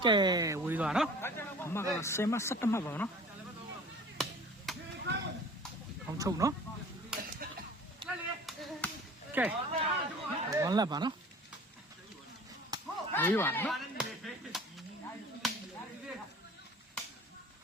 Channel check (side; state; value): both; normal; correlation 0.45